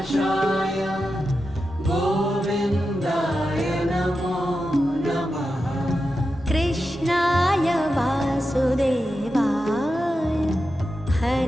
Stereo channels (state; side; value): normal; both; correlation 0.90